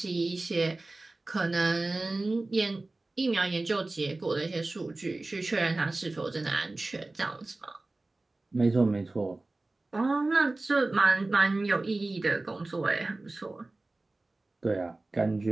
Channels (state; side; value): quieter; left; 3.1 dB